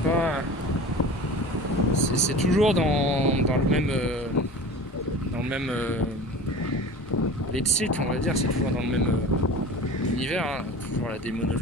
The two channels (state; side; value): normal; both; correlation 0.37